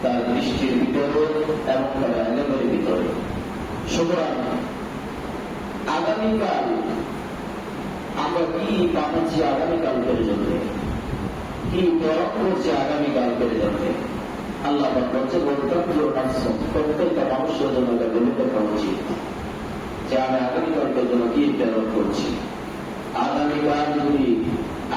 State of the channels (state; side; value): identical; both; correlation 1.00